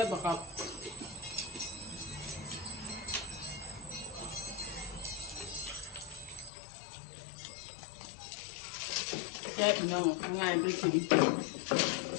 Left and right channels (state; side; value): drops out; right; at 6.5 s